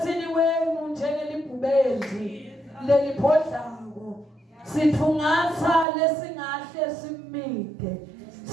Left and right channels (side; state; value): left; drops out; at 5.9 s